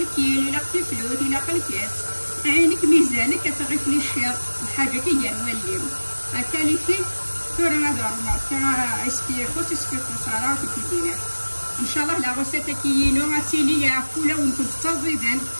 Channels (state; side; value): inverted; both; correlation -1.00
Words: لا فلوت لا قلكيس عينك ميزانك كتغيف لي الشير الحاجه كي نوليو هكا لي فين تورا هذا الماركه اسكي خوت اسكي خساره في الدينار ان شاء الله لا غوسيت كيينو اتيلي يا فولا ونكون تزيدان